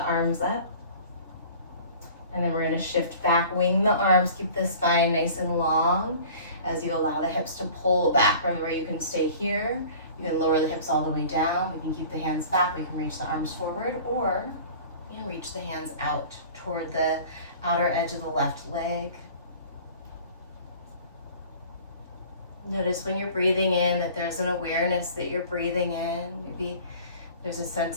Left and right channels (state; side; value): inverted; both; correlation -0.45